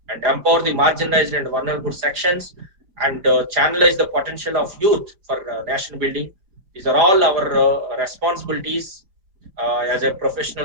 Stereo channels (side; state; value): left; late; 5.0 ms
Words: and empower the marginalized and vulnerable sections and channelize the potential of youth for nation building. These are all our responsibilities as a professional